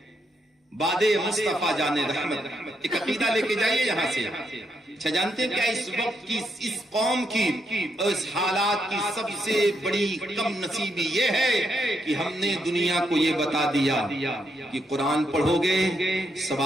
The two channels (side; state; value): both; normal; correlation 0.79